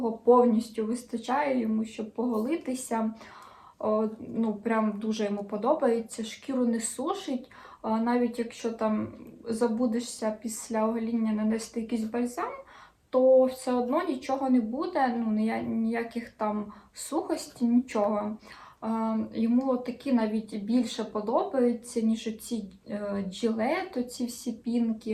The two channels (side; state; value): both; identical; correlation 1.00